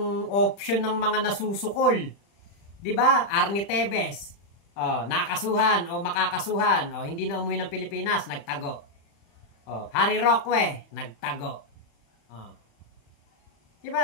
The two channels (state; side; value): late; right; 35 ms